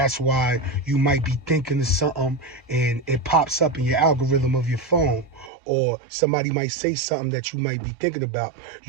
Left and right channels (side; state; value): left; drops out; at 5.5 s